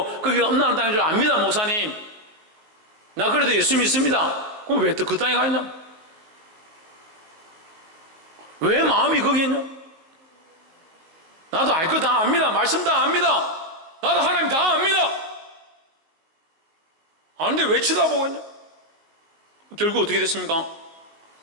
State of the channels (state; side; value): late; left; 19 ms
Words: 거기가 음란한 땅인 줄 압니다. 목사님, 나 그래도 예수 믿습니다. 그럼 왜 또 그 땅에 가 있냐? 왜 마음이 거기 있냐? 나도 알 거 다 압니다. 말씀 다 압니다. 나도 하나님 다 압니다. 아는데 왜 쳐다보고 있냐? 결국 어떻게 됐습니까?